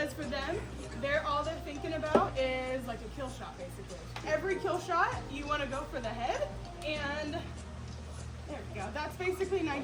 for them, all they're thinking about is like a kill shot basically. Every kill shot, you want to go for the head, and there we go. That's basically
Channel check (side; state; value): both; identical; correlation 1.00